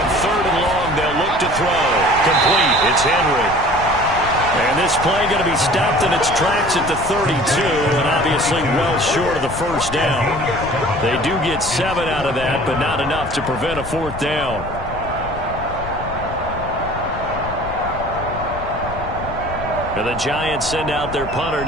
3rd and long, they'll look to throw. Complete. It's Henry. And this play going to be stopped in its tracks at the 32, and obviously well short of the first down. They do get 7 out of that, but not enough to prevent a 4th down. And the Giants send out their punter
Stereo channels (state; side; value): noise; left; rumble, 10 dB below the sound